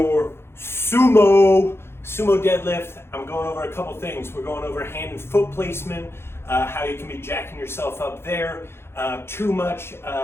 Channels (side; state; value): right; late; 0.12 ms